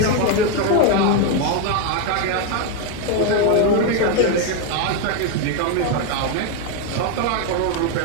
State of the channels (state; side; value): different; both; correlation 0.01